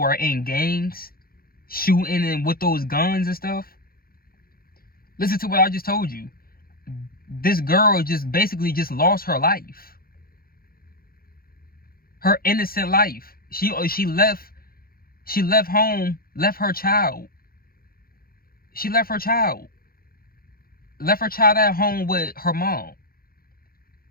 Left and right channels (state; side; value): late; right; 0.43 ms